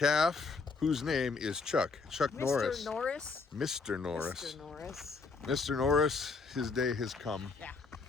whose name is Chuck Norris. Mr. Norris. Mr. Norris. Mr. Norris. Mr. Norris, his day has come. Yeah.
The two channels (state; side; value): quieter; right; 4.4 dB